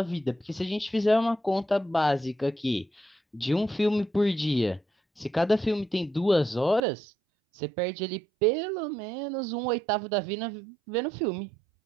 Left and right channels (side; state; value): left; drops out; at 6.8 s